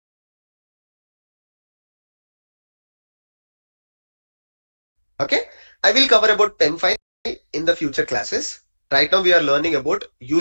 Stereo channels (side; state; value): both; inverted; correlation -1.00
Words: Okay, I will cover about PEM file in the future classes. Right now we are learning about